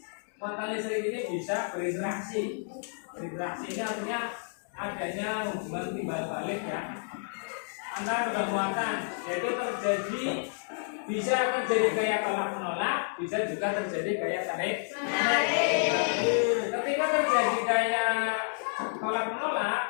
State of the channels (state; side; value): silent; right; digital silence